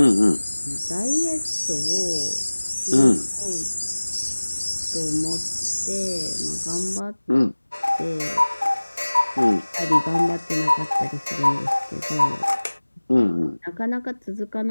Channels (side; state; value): both; inverted; correlation -1.00